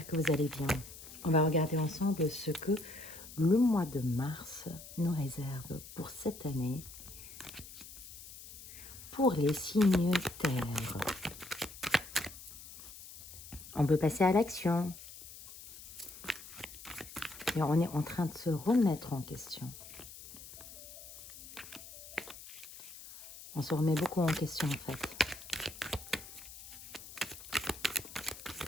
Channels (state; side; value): noise; left; hiss, 15 dB below the sound